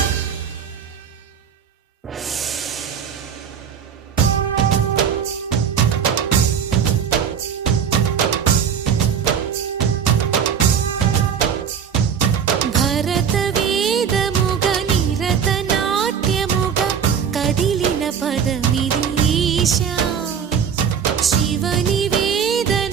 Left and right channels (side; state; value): left; quieter; 7.6 dB